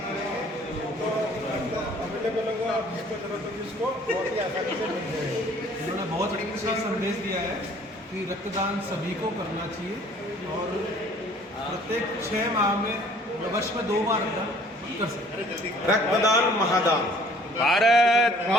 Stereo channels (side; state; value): both; normal; correlation 0.55